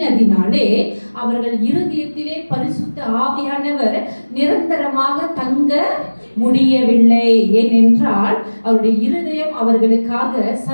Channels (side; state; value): both; inverted; correlation -1.00